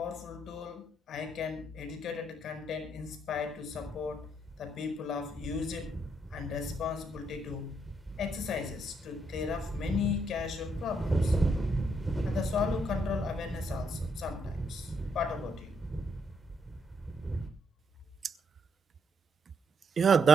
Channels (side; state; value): both; normal; correlation 0.75